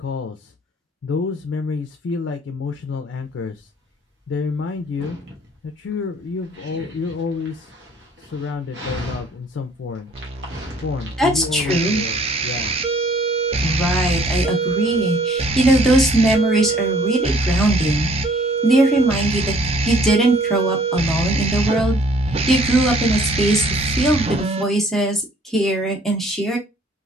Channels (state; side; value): normal; both; correlation 0.58